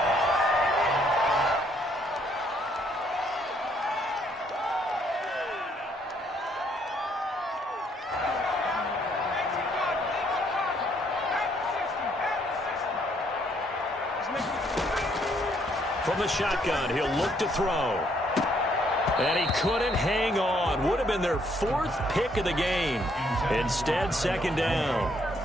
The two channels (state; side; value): normal; both; correlation 0.69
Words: From the shotgun, he'll look to throw. And he couldn't hang on. Would have been their 4th pick of the game. Instead, 2nd down.